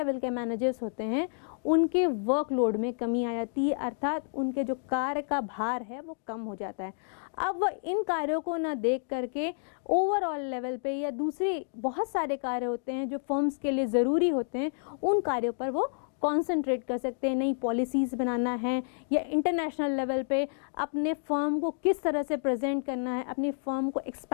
के मैनेजर्स होते हैं उनके वर्कलोड में कमी आ जाती है, अर्थात उनके जो कार्य का भार है वो कम हो जाता है। अब वह इन कार्यों को न देख करके ओवरऑल लेवल पे या दूसरे बहुत सारे कार्य होते हैं जो फर्म्स के लिए ज़रूरी होते हैं, उन कार्यों पर वो कॉन्सेंट्रेट कर सकते हैं। नई पॉलिसीज़ बनाना है या इंटरनेशनल लेवल पे अपने फर्म को किस तरह से प्रेजेंट करना है, अपनी फर्म को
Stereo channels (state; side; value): silent; right; digital silence